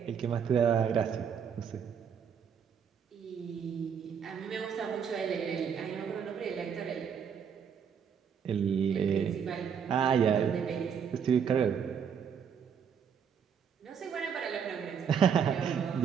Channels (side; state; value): left; quieter; 7.3 dB